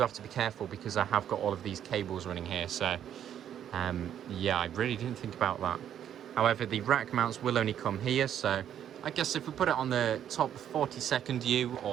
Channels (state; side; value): quieter; left; 10.0 dB